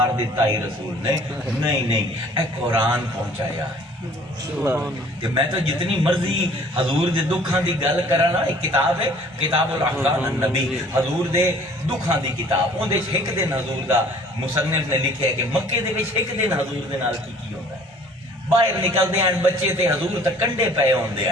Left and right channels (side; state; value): both; normal; correlation 0.53